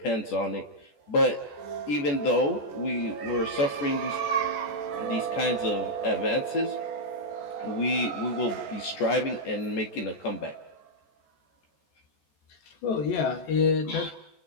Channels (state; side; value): late; right; 14 ms